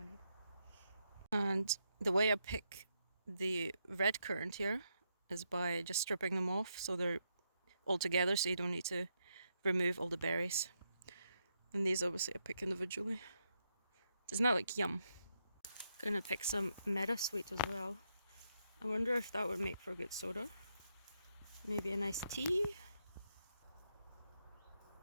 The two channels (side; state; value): both; inverted; correlation -0.81